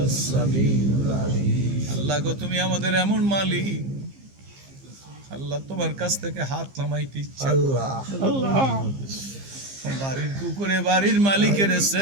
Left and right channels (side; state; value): left; late; 15 ms